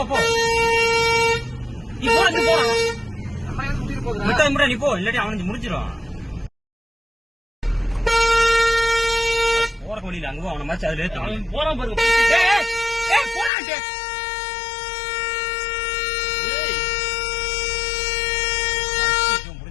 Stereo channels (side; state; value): right; drops out; at 13.5 s